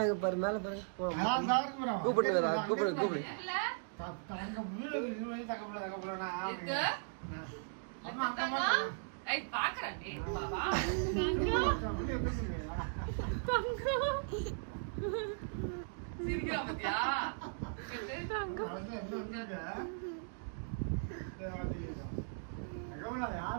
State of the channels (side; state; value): left; silent; digital silence